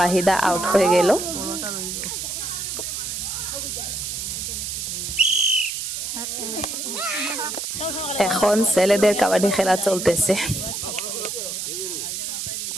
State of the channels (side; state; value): right; noise; hiss, 4 dB below the sound